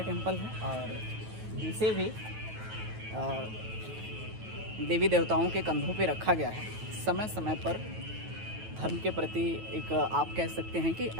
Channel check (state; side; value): late; left; 9.2 ms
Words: टेम्पल है और इसे भी देवी देवताओं के कंधों पे रखा गया है। समय समय पर धर्म के प्रति एक आप कह सकते हैं कि